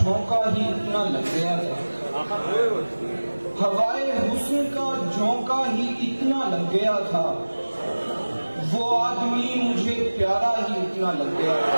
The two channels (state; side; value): inverted; both; correlation -1.00